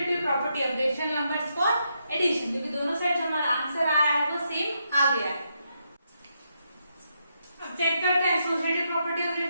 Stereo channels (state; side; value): inverted; both; correlation -0.81